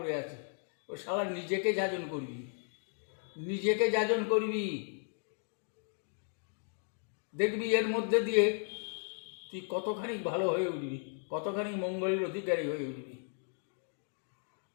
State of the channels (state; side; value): silent; right; 54 dB below the other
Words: আছি। ও শালা, নিজেকে যাজন করবি, নিজেকে যাজন করবি, দেখবি এর মধ্যে দিয়ে তুই কতখানি ভালো হয়ে উঠবি, কতখানি মঙ্গলের অধিকারী হয়ে উঠবি।